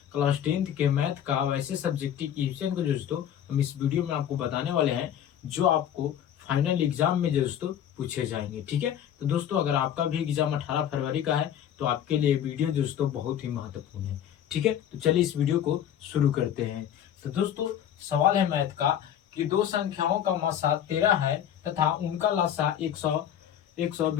क्लास 10th के मैथ का वैसे सब्जेक्टिव क्वेश्चन को दोस्तों हम इस वीडियो में आपको बताने वाले हैं जो आपको फाइनल एग्जाम में दोस्तों पूछे जाएंगे। ठीक है, तो दोस्तों अगर आपका भी एग्जाम 18 फरवरी का है तो आपके लिए वीडियो दोस्तों बहुत ही महत्वपूर्ण है। ठीक है, तो चलिए इस वीडियो को शुरू करते हैं। तो दोस्तों सवाल है मैथ का कि दो संख्याओं का मासा 13 है तथा उनका लासा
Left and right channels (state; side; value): quieter; right; 10.0 dB